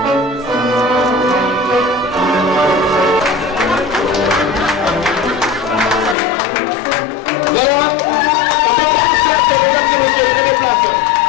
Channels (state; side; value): drops out; right; at 6.2 s